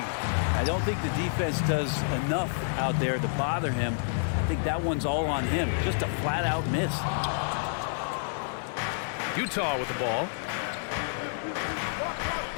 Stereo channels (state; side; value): silent; right; digital silence